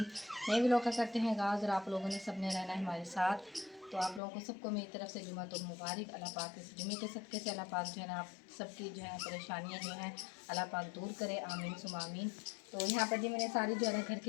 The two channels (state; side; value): drops out; right; at 4.2 s